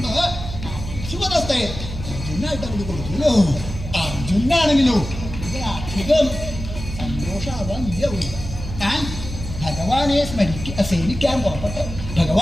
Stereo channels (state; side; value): noise; right; hum, 8 dB below the sound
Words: ശുഭദത്തെ അർജുനായിട്ട് അവർ കൊടുത്തുല്ലോ. അർജുനാണെങ്കിലോ അധികം സന്തോഷമാവാൻ ഇല്ല. താൻ ഭഗവാനെ സേവിക്കാൻ പുറപ്പെട്ട്